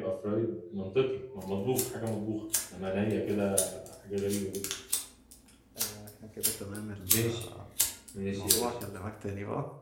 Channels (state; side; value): identical; both; correlation 1.00